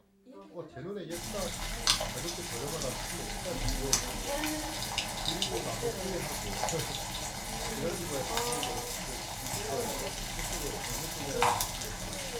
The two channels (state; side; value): identical; both; correlation 1.00